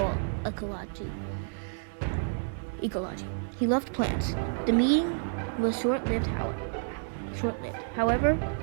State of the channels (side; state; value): left; silent; 58 dB below the other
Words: He loved plants. The meeting was short-lived. However,